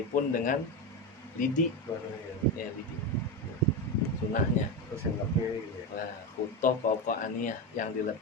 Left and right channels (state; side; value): normal; both; correlation 0.16